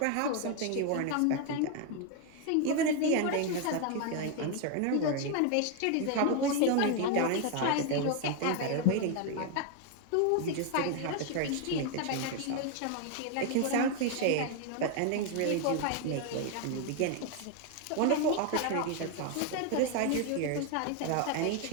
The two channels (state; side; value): different; both; correlation 0.01